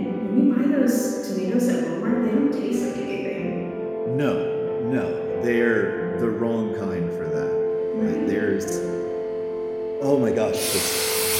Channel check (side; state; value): both; identical; correlation 1.00